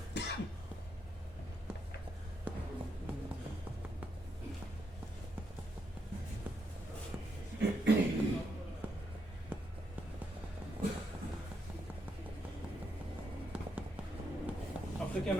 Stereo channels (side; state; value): both; normal; correlation 0.80